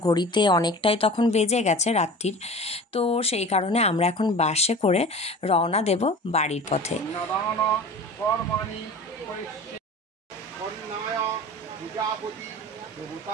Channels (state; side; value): normal; both; correlation 0.38